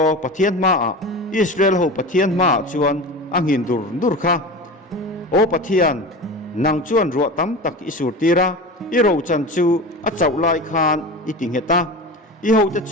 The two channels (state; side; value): normal; both; correlation 0.30